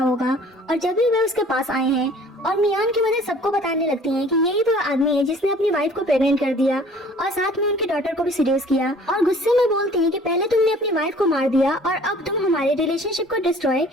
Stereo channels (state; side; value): normal; both; correlation 0.51